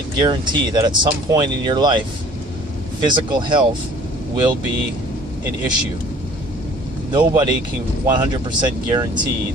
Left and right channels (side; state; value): both; normal; correlation 0.52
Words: guarantee that at some point in your life, physical health will be an issue. Nobody can 100% guarantee